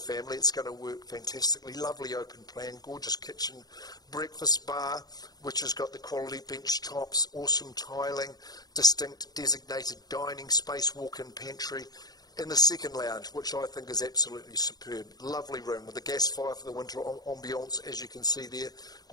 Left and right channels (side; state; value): right; late; 0.19 ms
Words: It's going to work fantastically. Lovely open plan, gorgeous kitchen, breakfast bar, which has got the quality bench tops, awesome tiling, distinct designated dining space, walk-in pantry, in the second lounge, which I think is absolutely superb. Lovely room with a gas fire for the winter ambiance, as you can see there.